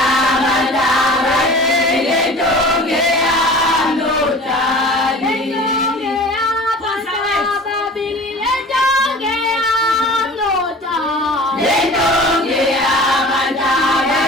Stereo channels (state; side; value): normal; both; correlation 0.41